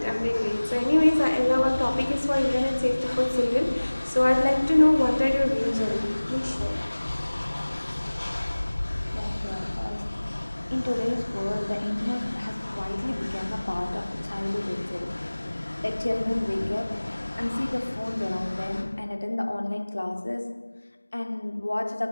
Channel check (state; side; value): inverted; both; correlation -1.00